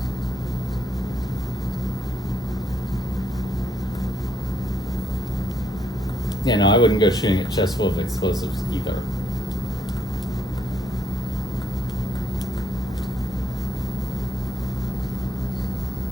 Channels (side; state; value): both; normal; correlation 0.74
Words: Yeah, no, I wouldn't go shooting at chests full of explosives either.